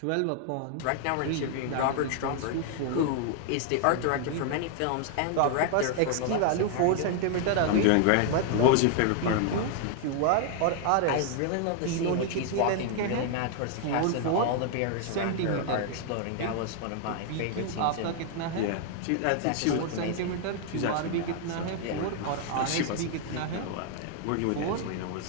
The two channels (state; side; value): different; both; correlation 0.00